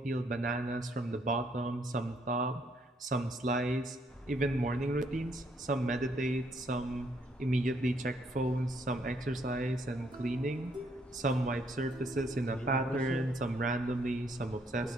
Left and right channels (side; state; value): both; normal; correlation 0.70